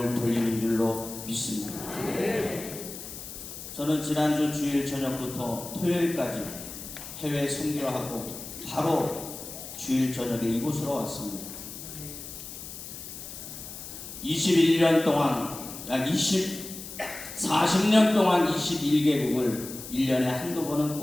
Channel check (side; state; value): left; noise; hiss, 11 dB below the sound